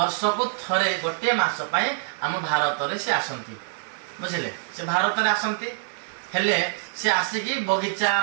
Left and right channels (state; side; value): silent; left; digital silence